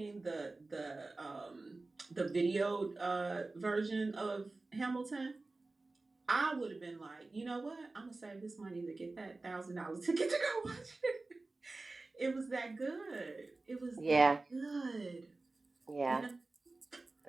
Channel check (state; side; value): quieter; left; 3.3 dB